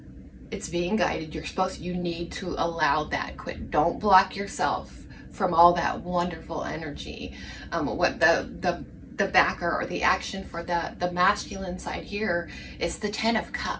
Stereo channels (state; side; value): identical; both; correlation 1.00